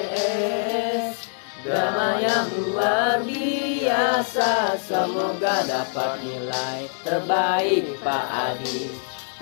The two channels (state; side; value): silent; right; 63 dB below the other